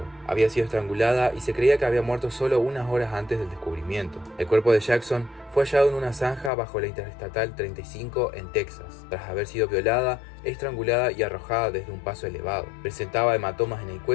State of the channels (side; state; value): right; drops out; at 6.5 s